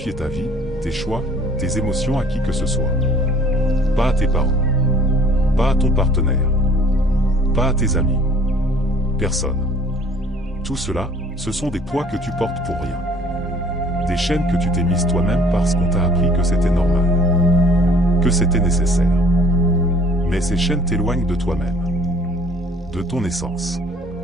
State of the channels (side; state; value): both; normal; correlation 0.55